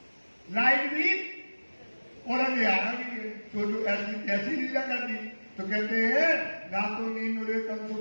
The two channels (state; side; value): inverted; both; correlation -1.00